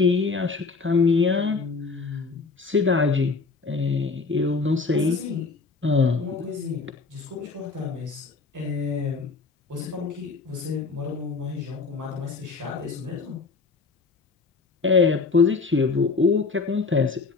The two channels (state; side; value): quieter; right; 4.3 dB